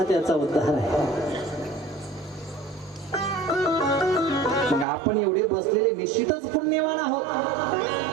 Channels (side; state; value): left; drops out; at 4.9 s